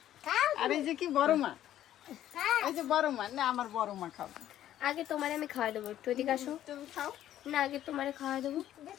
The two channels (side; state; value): right; quieter; 12.1 dB